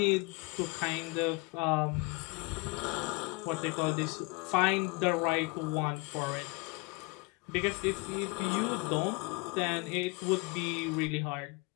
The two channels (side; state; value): right; quieter; 27.2 dB